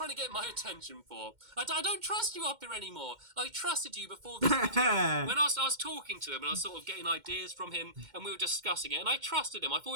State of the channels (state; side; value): late; left; 2.1 ms